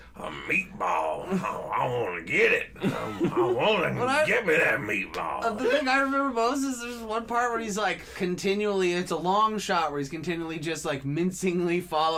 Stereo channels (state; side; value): identical; both; correlation 1.00